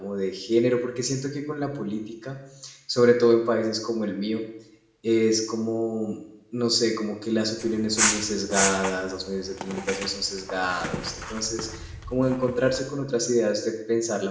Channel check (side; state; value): both; identical; correlation 1.00